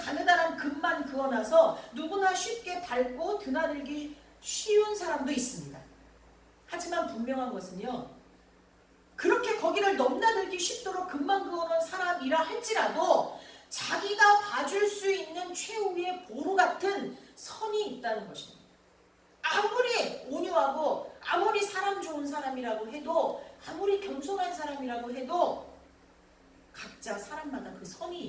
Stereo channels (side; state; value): both; identical; correlation 1.00